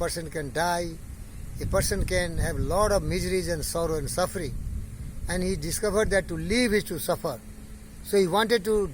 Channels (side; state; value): both; identical; correlation 1.00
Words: can die, a person can have a lot of miseries and sorrow and suffering. And he discovered that to live is to suffer. So he wanted to